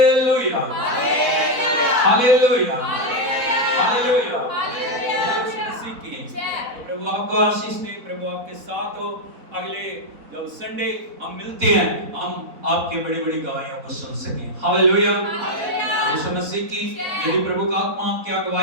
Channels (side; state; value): left; late; 4.1 ms